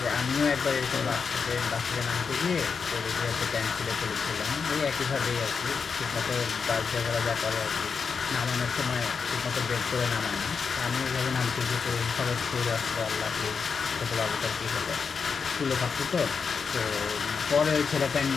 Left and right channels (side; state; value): right; quieter; 5.6 dB